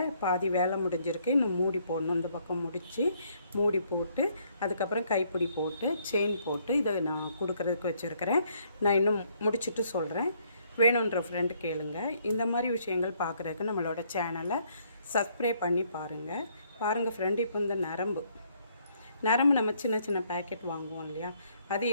பாதி வேலை முடிஞ்சிருக்கு, இன்னும் மூடி போடணும். இந்த பக்கம் முடித்து மூடி போட்டு அதுக்கப்புறம் கைப்பிடி போட்டு செயின் போட்டு இதை நான் கொடுக்குறதுக்கு வச்சுருக்கிறேன். நான் இன்னும் முடிச்சுட்டு சொல்கிறேன். வேணுன்ற ஃப்ரெண்டு கேளுங்க. இந்த மாதிரி விஷயங்கள் பார்க்குறதுக்கு நம்மளோட சேனலை சப்ஸ்கிரைப் பண்ணி பாருங்கள் ஃப்ரெண்டு. இப்போ இந்த நரம்பு நம்ம சின்ன சின்ன பேக்கெட் வாங்குவோம் இல்லையா, அது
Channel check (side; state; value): both; inverted; correlation -0.68